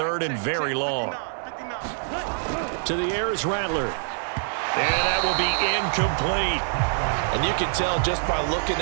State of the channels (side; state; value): left; silent; digital silence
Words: and very long. To the air is Rattler. And that will be incomplete. And you can tell just by looking